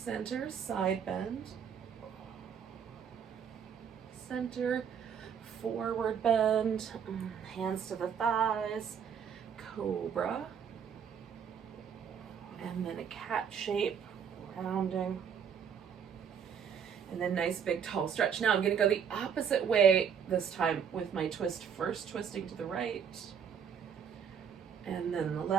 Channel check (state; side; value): quieter; left; 7.5 dB